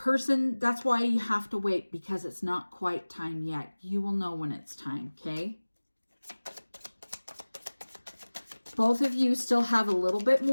that's why you have to wait, because it's not quite time yet. You will know when it's time, okay? Both of you still have a little bit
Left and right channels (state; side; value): inverted; both; correlation -1.00